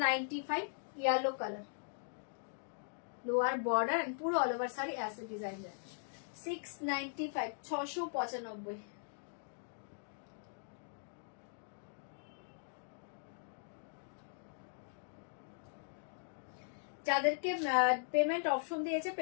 yellow colour lower border and पूरा ऑल ओवर साड़ी ऐसे डिजाइन जाएगा 695 695 যাদেরকে পেমেন্ট অপশন দিয়েছে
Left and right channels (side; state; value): right; silent; digital silence